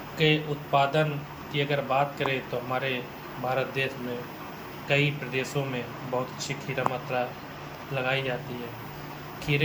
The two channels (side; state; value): both; identical; correlation 1.00